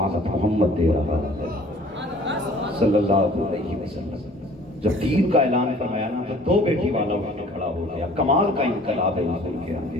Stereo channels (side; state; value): both; normal; correlation 0.52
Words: محمد دے رہا ہے صلی اللہ علیہ وسلم. جب 3 کا اعلان فرمایا نا تو 2 بیٹی والا اٹھ کے کھڑا ہو گیا. کمال کا انقلاب ہے حضور کے